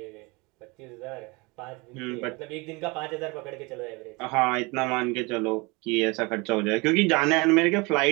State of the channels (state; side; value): quieter; left; 26.4 dB